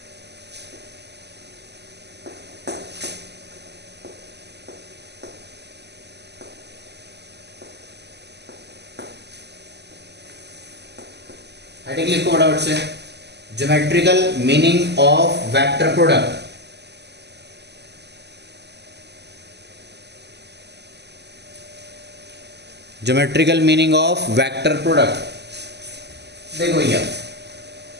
हेडिंग लिखो फटाफट से, geometrical meaning of vector product. Geometrical meaning of vector product. देखो भैया,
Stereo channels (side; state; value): left; late; 0.50 ms